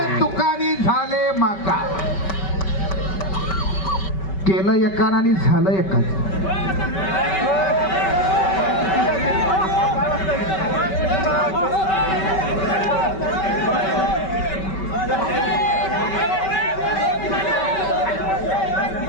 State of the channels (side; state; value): right; late; 5.2 ms